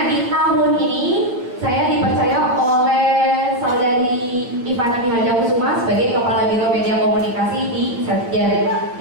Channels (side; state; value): left; late; 8.6 ms